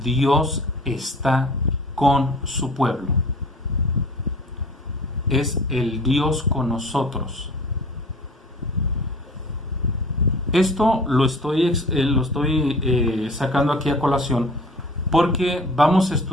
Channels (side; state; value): both; normal; correlation 0.45